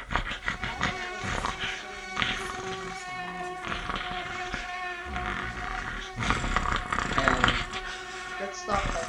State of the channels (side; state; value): both; identical; correlation 1.00